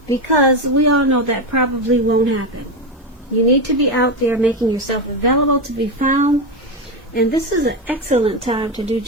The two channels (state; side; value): normal; both; correlation 0.13